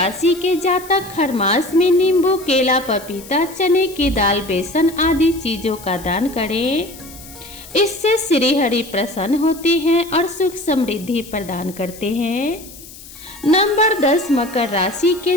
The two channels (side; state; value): left; noise; hiss, 18 dB below the sound